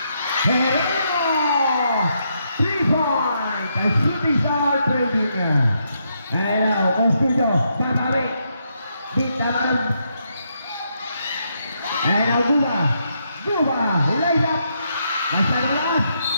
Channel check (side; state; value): both; inverted; correlation -0.78